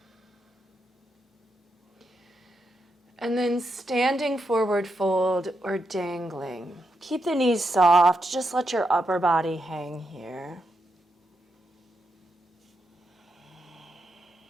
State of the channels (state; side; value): normal; both; correlation 0.83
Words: And then standing forward fold or dangling. Keep the knees soft, just let your upper body hang here.